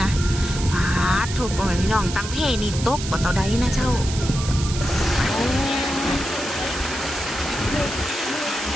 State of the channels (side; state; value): right; noise; hiss, 9 dB below the sound